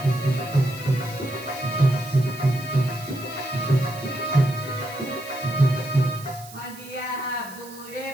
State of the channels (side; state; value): right; noise; hiss, 18 dB below the sound